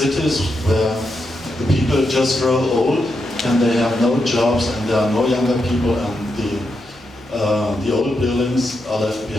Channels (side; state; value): both; normal; correlation 0.84